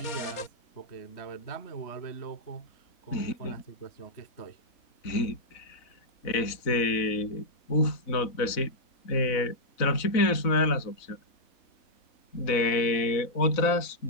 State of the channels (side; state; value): right; late; 4.0 ms